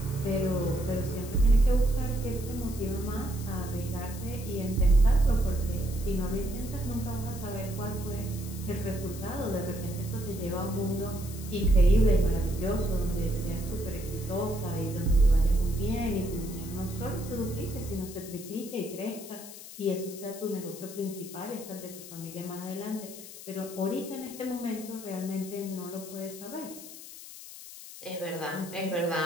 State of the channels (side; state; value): left; noise; hiss, 14 dB below the sound